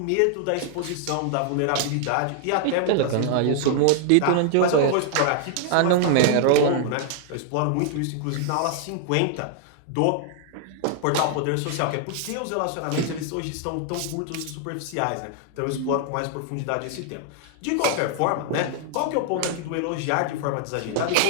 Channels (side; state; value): both; different; correlation 0.00